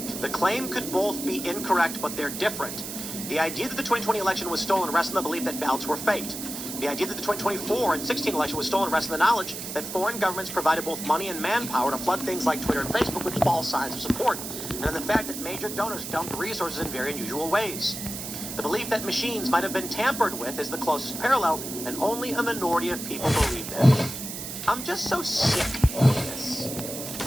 The claim could both be incorrect, but they're different. The idea that the 2020 election was stolen rests on the belief that ballots were faked. The idea that the 2024 and 16 election was stolen rests in the knowledge that foreign governments provided both money and manpower to flood things like Twitter and Facebook with false signs of support, and in the fact that major donors dumped resources in very unusual ways. The belief that machines might have been tampered with is the closest parallel, and only a minority of people believe that. I'm just so sick of this.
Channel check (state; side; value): noise; right; hiss, 7 dB below the sound